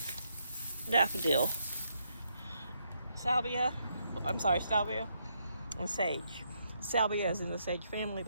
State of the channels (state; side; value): inverted; both; correlation -0.77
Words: daffodil. Salvia and sage. Salvia is in the sage family,